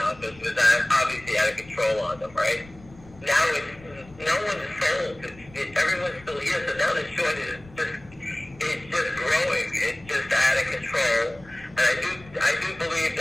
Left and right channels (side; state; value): left; noise; rumble, 23 dB below the sound